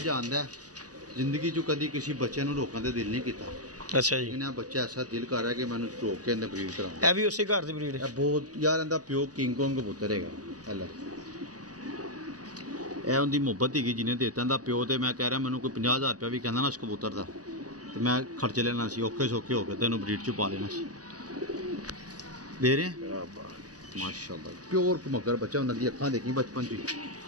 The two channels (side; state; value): left; late; 0.67 ms